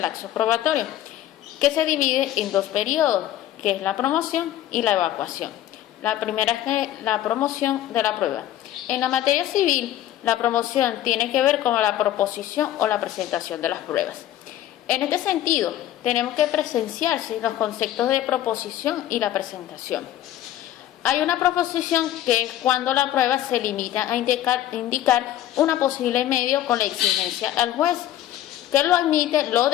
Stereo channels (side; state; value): right; quieter; 12.9 dB